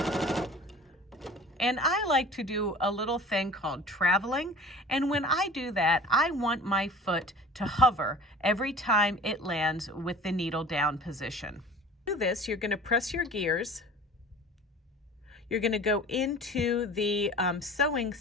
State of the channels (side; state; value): both; normal; correlation 0.43